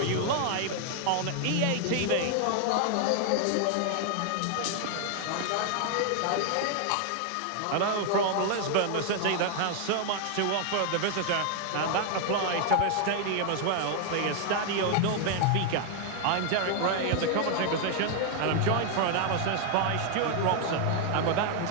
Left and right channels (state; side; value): different; both; correlation 0.00